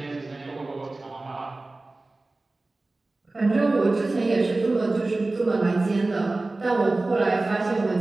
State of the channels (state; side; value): quieter; left; 3.1 dB